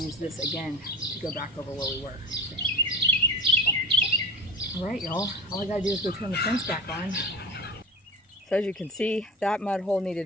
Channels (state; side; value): normal; both; correlation 0.31